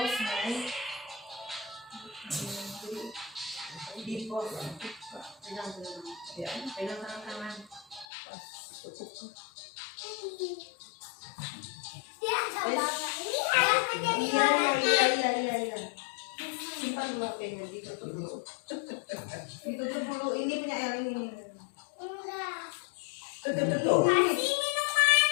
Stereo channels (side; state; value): right; drops out; at 8.1 s